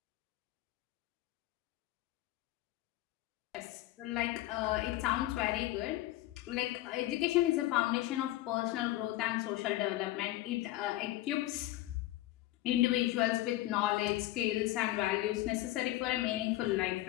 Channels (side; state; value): right; quieter; 16.1 dB